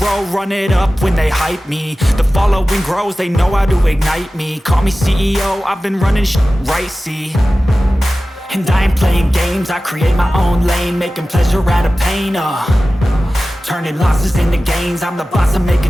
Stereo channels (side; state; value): both; normal; correlation 0.96